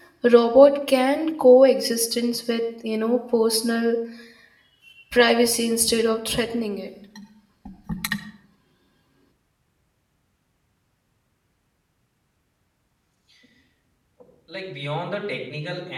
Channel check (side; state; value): both; identical; correlation 1.00